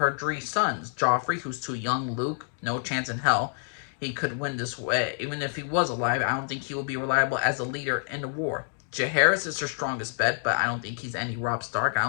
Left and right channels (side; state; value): right; silent; 60 dB below the other